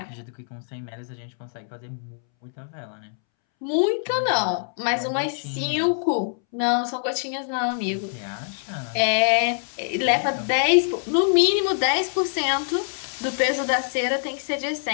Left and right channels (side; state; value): right; silent; 62 dB below the other